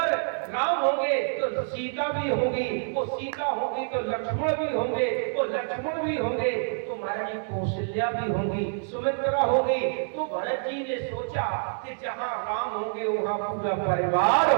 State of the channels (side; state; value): left; silent; digital silence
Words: राम होंगे तो सीता भी होगी, वो सीता होगी तो लक्ष्मण भी होंगे, वो लक्ष्मण भी होंगे तो महारानी कौशल्या भी होंगी, सुमित्रा होगी। तो भरत जी ने सोचा कि जहां राम होंगे वहां पूरा परिवार